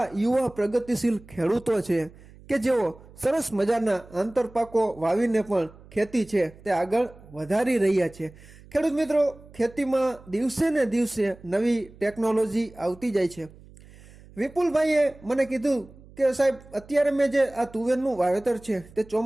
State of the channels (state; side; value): noise; right; hum, 22 dB below the sound